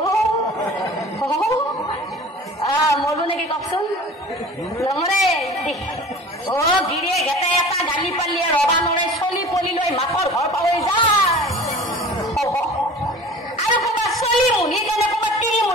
মৰব নেকি কওকচোন নমৰে গিৰিয়েক এটা গালি পালিয়ে ৰবা নৰে চলি পলি লৈ মাকৰ ঘৰ পাহৰি যায় আৰু ক'ৰবাত চলি মুনি কেনে ক'ৰবাত তিৰি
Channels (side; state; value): both; normal; correlation 0.42